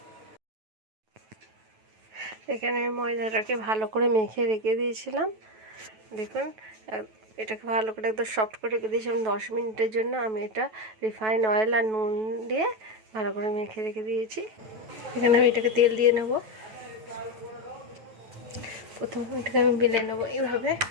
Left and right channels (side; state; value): left; late; 9.2 ms